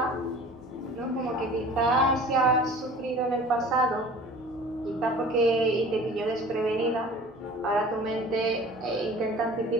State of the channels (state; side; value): normal; both; correlation 0.44